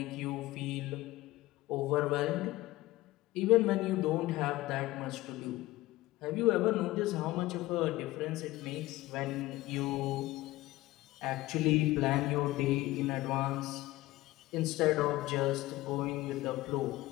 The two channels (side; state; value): right; quieter; 18.0 dB